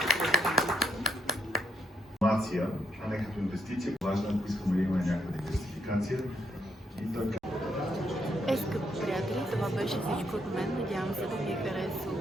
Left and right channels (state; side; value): normal; both; correlation 0.75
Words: Информация, а не като инвестиция. Важно, ако искаме да имаме някаква диверсификация. И така. Скъпи приятели, това беше всичко от мен. Надявам се да ви е харесало.